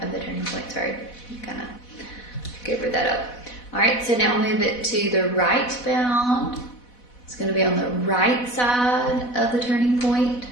of the turning point, sorry, kind of covered that up. All right, so now move it to the right bound. It's going to be on the right side of the turning point.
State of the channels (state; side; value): late; right; 4.1 ms